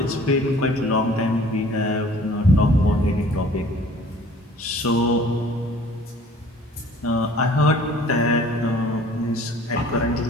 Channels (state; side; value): normal; both; correlation 0.51